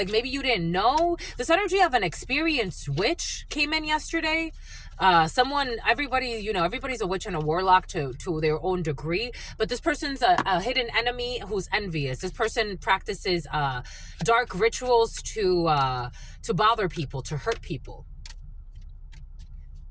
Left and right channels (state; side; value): identical; both; correlation 1.00